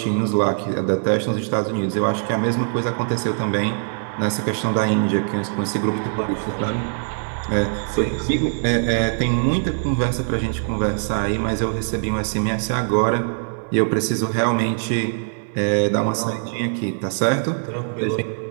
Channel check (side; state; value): left; silent; 59 dB below the other